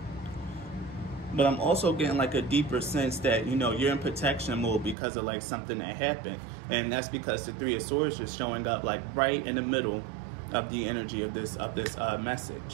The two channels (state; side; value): drops out; left; at 5.0 s